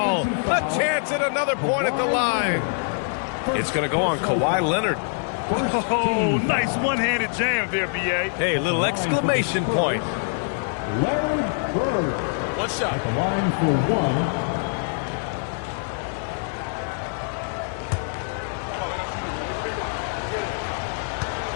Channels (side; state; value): right; silent; 59 dB below the other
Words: A chance at another point at the line. It's going to go on Kawhi Leonard. Oh, nice one-handed jam there, B.A. Hey, little exclamation point. Larry Bird. One shot. At the line for 1.